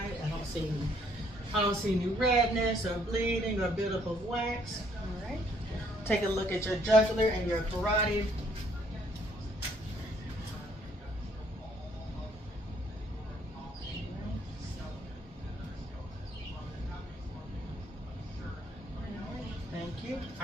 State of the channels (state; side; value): normal; both; correlation 0.66